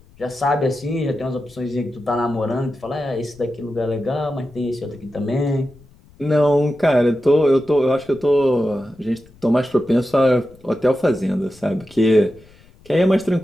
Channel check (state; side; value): noise; left; rumble, 27 dB below the sound